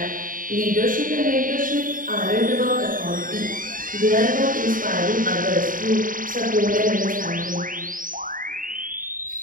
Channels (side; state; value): left; late; 0.40 ms